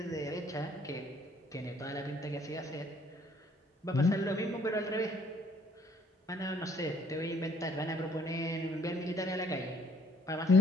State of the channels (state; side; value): normal; both; correlation 0.62